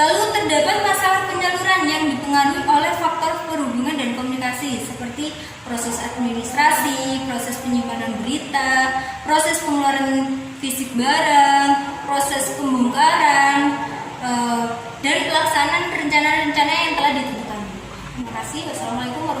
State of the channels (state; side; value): identical; both; correlation 1.00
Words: terdapat masalah penyaluran yang dipengaruhi oleh faktor perhubungan dan komunikasi seperti proses administrasi, proses penyimpanan berita, proses pengeluaran fisik barang, proses pembongkaran, dan pelaksanaan rencana-rencana yang telah ditentukan. Terima kasih. Wassalamualaikum